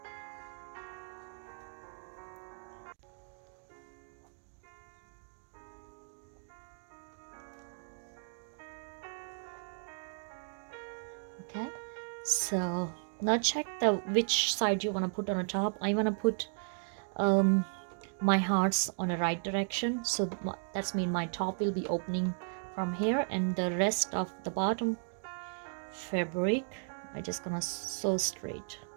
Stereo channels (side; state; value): left; silent; 54 dB below the other